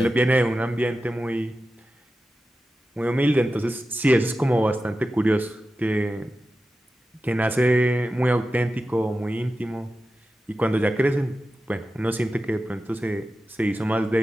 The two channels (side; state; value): both; normal; correlation 0.92